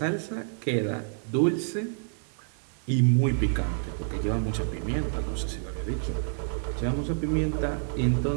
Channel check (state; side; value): silent; left; digital silence